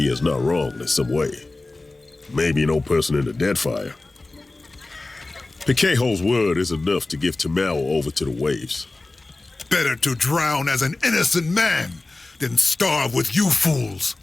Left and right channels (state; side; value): quieter; right; 3.1 dB